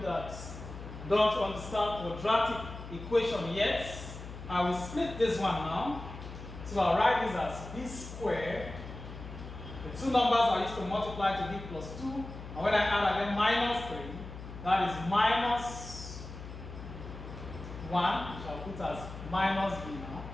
that don't understand quadratic equation yet, I will split this one now. So I'll write this as b squared. The two numbers I used to multiply to give plus 2. And when I add again minus 3, that is minus 1, which I'll put as minus b now.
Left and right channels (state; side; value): noise; left; hum, 12 dB below the sound